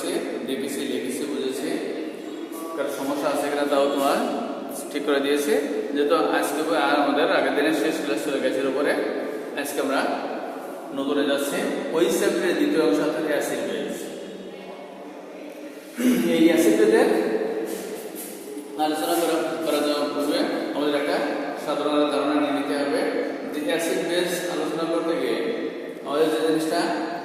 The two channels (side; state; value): both; identical; correlation 1.00